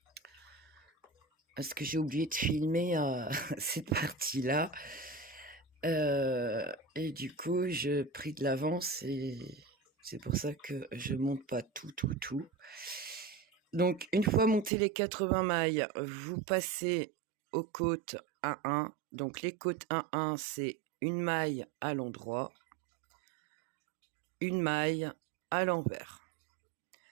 parce que j'ai oublié de filmer cette partie-là, et du coup je pris de l'avance et c'est pour ça que je monte pas tout. Donc une fois monté les 80 mailles, vous passez aux côtes 1-1. Donc les côtes 1-1, c'est une maille à l'endroit, une maille à l'envers,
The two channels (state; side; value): drops out; left; at 14.7 s